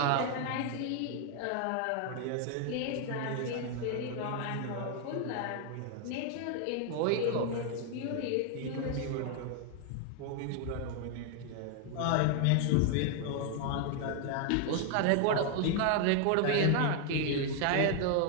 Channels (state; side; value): different; both; correlation 0.00